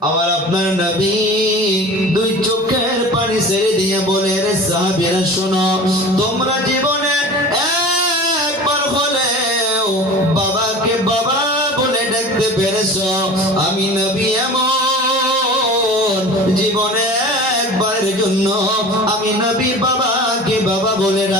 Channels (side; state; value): both; normal; correlation 0.38